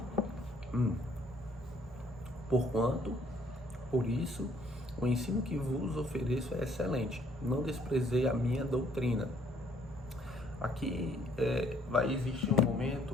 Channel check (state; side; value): normal; both; correlation 0.64